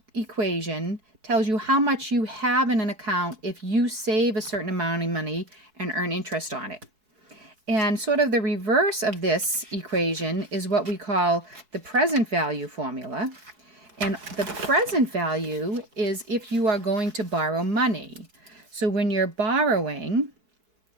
equation tells you how much you have in an account if you save a certain amount of money and earn interest on it. And sort of the reverse of this equation is what we call the present value formula. And the present value is if you are going to borrow money. So when you're borrowing,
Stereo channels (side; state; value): left; late; 4.6 ms